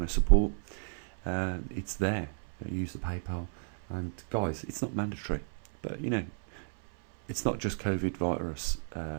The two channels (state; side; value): silent; left; 56 dB below the other